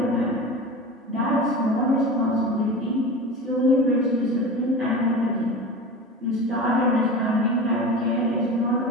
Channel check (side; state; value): both; normal; correlation 0.31